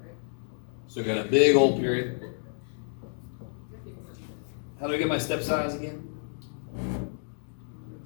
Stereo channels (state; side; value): silent; right; digital silence